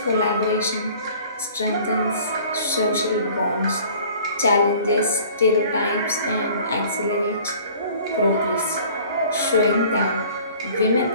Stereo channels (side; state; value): both; inverted; correlation -0.49